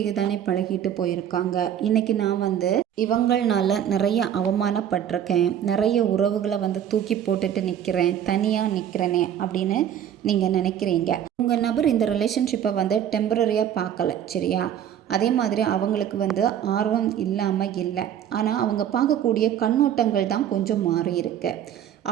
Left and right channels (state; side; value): quieter; left; 9.9 dB